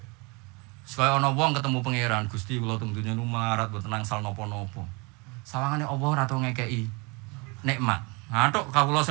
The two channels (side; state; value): left; quieter; 28.5 dB